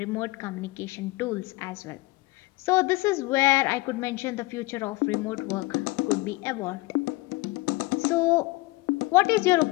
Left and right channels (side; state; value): right; quieter; 22.1 dB